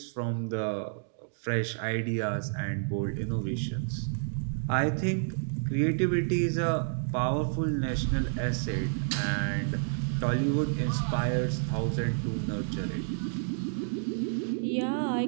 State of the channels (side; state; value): left; silent; digital silence